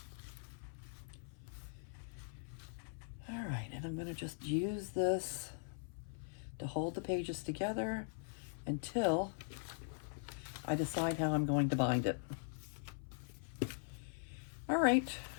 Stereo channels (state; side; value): silent; right; 50 dB below the other